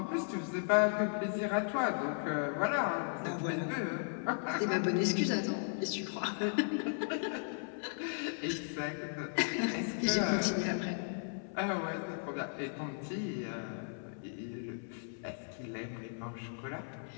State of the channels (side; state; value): right; silent; 54 dB below the other